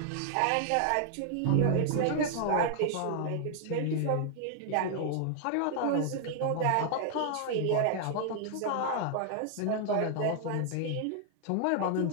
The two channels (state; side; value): different; both; correlation 0.00